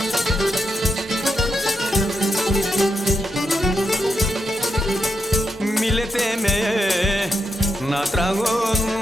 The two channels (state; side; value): normal; both; correlation 0.84